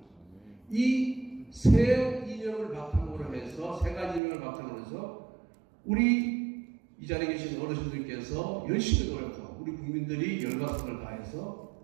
이 세 이념을 바탕으로 해서 세 가지 이념을 바탕으로 해서 우리 이 자리에 계신 어르신들께서 열심히 노력하고 우리 국민들이 열과 성을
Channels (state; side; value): drops out; left; at 4.2 s